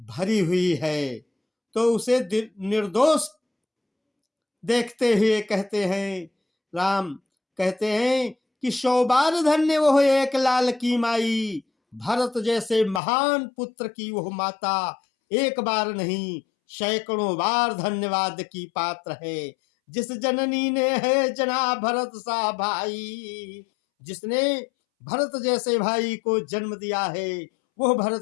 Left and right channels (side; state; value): right; drops out; at 13.0 s